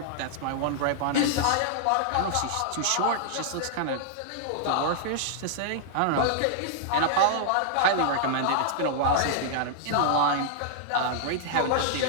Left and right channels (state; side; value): different; both; correlation -0.01